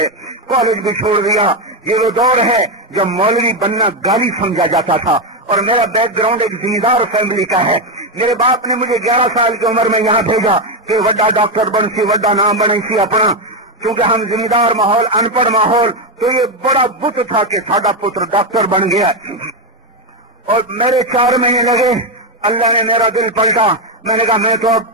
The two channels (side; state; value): both; normal; correlation 0.07